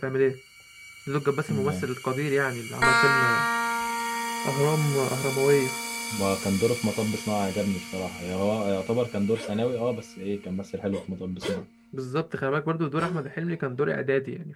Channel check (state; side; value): identical; both; correlation 1.00